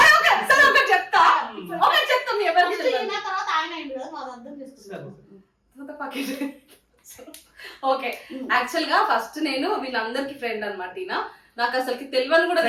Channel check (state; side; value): identical; both; correlation 1.00